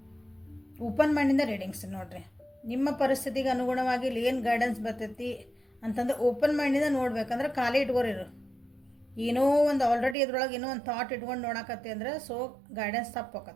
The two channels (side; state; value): left; drops out; at 10.2 s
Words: ಓಪನ್ ಮೈಂಡಿಂದ ರೀಡಿಂಗ್ಸ್ ನೋಡಿರಿ. ನಿಮ್ಮ ಪರಿಸ್ಥಿತಿಗೆ ಅನುಗುಣವಾಗಿ ಇಲ್ಲಿ ಏನು ಗೈಡೆನ್ಸ್ ಬರ್ತೈತಿ ಅಂತಂದ್ರೆ ಓಪನ್ ಮೈಂಡಿಂದ ನೋಡ್ಬೇಕಂದ್ರೆ ಖಾಲಿ ಇಟ್ಕೋರಿರು. ಏನೋ ಒಂದು ಆಲ್ರೆಡಿ ಇದ್ರೊಳಗೆ ಏನೋ ಒಂದು ಥಾಟ್ ಇಟ್ಕೊಂಡು ನೋಡಕತ್ತಿ ಅಂದ್ರೆ ಸೊ ಗೈಡೆನ್ಸ್ ತಪ್ಪು